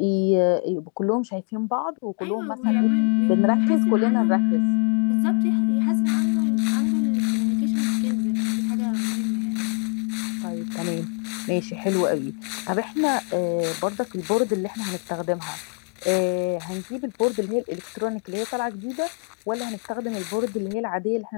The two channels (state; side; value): quieter; right; 36.8 dB